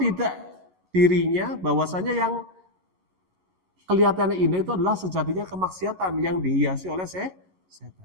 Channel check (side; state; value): left; late; 11 ms